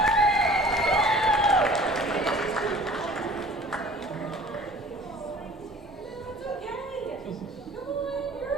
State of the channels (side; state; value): both; normal; correlation 0.47